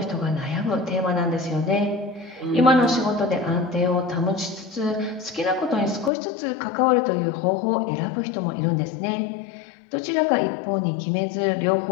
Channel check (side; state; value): right; drops out; at 6.1 s